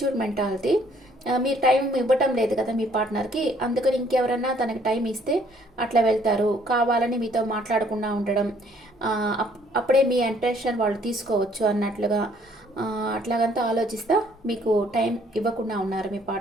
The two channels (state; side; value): normal; both; correlation 0.62